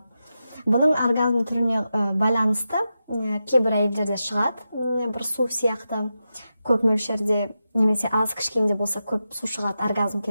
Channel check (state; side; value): inverted; both; correlation -0.90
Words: Бұның оргазм түріне байланысты кейбір әйелдерде шығады, бір су сияқты көп мөлшерде, немесе аз кішкенде болса көп су шығады оргазм